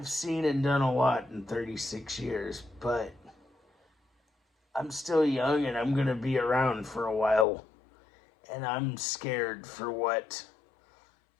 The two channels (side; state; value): right; drops out; at 7.5 s